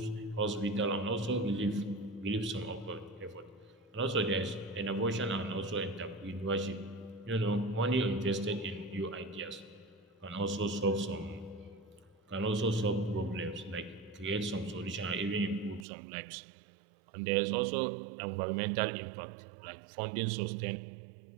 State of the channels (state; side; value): drops out; left; at 15.9 s